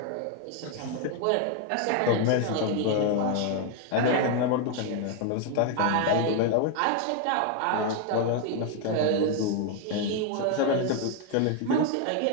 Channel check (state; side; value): different; both; correlation 0.00